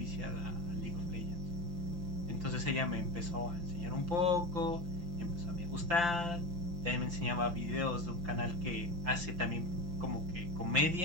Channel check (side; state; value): left; late; 5.8 ms